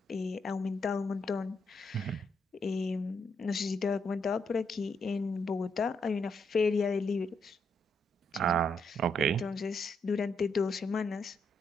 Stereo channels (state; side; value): normal; both; correlation 0.77